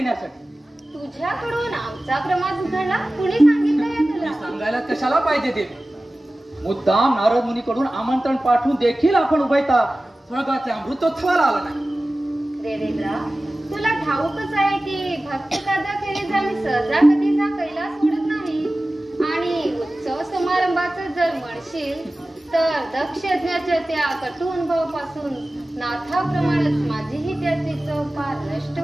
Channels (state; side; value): normal; both; correlation 0.96